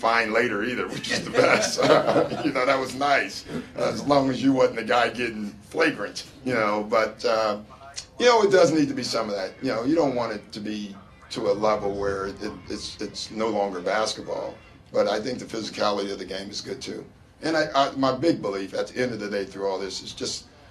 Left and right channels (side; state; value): both; identical; correlation 1.00